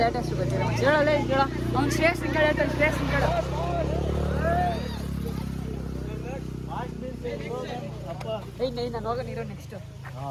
ಅಷ್ಟು ಗೊತ್ತಿಲ್ಲ. ಹೇಳಲ್ಲ, ಹೇಳ. ಅವ್ನು ಶ್ರೇಷ್ಠ ಕೇಳ ಶ್ರೇಷ್ಠ ಕೇಳ. ನಾನು ಹೋಗ ನೀರು ನೆಕ್ಸ್ಟ್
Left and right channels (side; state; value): both; identical; correlation 1.00